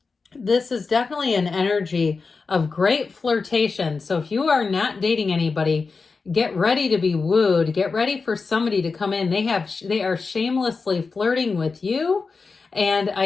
this is definitely an energy of great flirtation. So if you are not dating anybody, get ready to be wooed. Get ready for somebody to come in. They are shamelessly flirting with you. And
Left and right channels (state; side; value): quieter; right; 4.5 dB